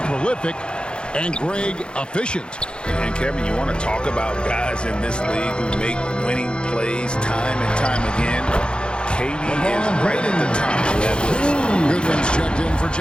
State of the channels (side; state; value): right; late; 0.052 ms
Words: prolific and Greg efficient. And Kevin, you want to talk about guys in this league who make winning plays time and time again? KD is right at the top of that list. Goodwin's checked in for